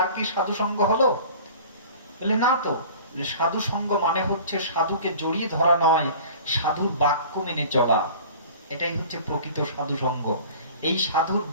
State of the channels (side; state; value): both; inverted; correlation -0.43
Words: কি সাধু সঙ্গ হলো? বলে না তো। সাধু সঙ্গ মানে হচ্ছে সাধুকে জড়িয়ে ধরা নয়, সাধুর বাক্য মেনে চলা। এটাই হচ্ছে প্রকৃত সাধু সঙ্গ। এই সাধুর